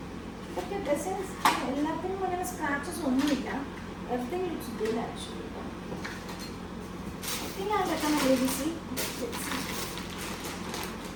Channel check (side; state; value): both; identical; correlation 1.00